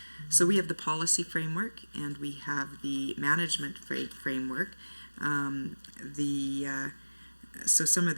So we have the policy framework and we have the management framework. So some of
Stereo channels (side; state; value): both; inverted; correlation -1.00